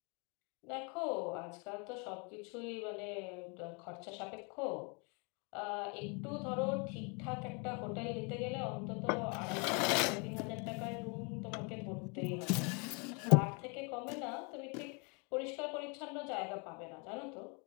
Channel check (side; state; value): right; quieter; 33.5 dB